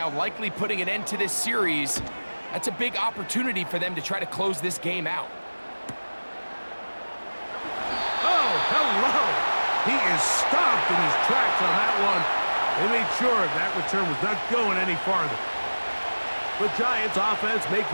likely putting an end to this series, that's a big opportunity for them to try to close this game out. Oh, hello! He is stopped in his tracks on that one. They made sure that return was not going any farther. The Giants offense make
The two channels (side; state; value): both; inverted; correlation -1.00